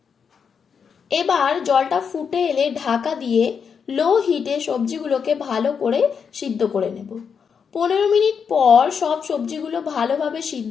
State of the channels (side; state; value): right; quieter; 6.5 dB